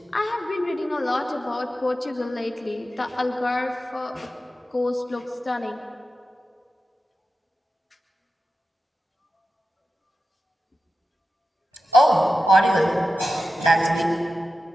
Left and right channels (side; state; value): both; normal; correlation 0.92